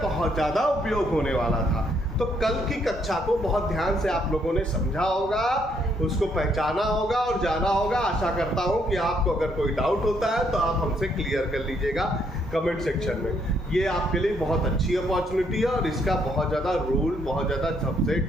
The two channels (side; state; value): both; normal; correlation 0.71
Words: बहुत ज्यादा उपयोग होने वाला था। तो कल की कक्षा को बहुत ध्यान से आप लोगों ने समझा होगा, उसको पहचाना होगा और जाना होगा। आशा करता हूं कि आपको अगर कोई डाउट होता है तो आप हमसे क्लियर कर लीजिएगा कमेंट सेक्शन में। ये आपके लिए बहुत अच्छी अपॉर्चुनिटी है और इसका बहुत ज़्यादा रूल, बहुत ज़्यादा